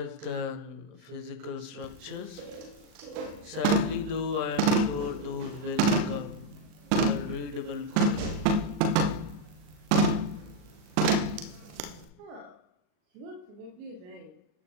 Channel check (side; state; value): left; late; 39 ms